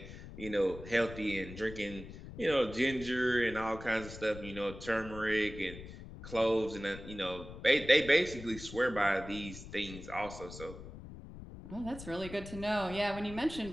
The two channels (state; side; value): noise; left; rumble, 13 dB below the sound